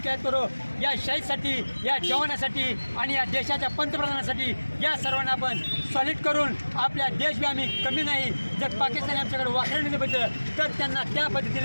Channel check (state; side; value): inverted; both; correlation -1.00